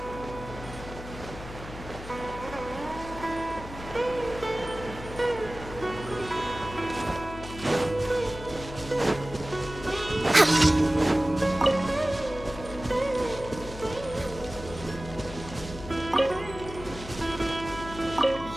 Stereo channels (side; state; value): left; noise; hum, 12 dB below the sound